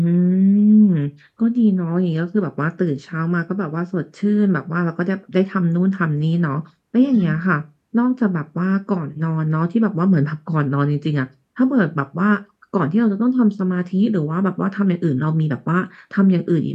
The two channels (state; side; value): identical; both; correlation 1.00